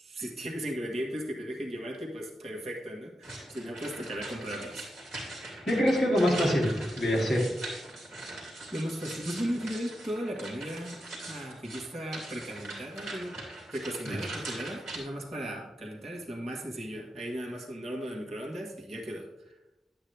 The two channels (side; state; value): both; normal; correlation 0.87